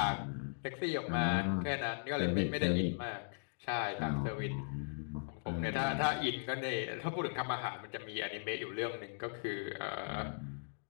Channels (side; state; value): right; silent; digital silence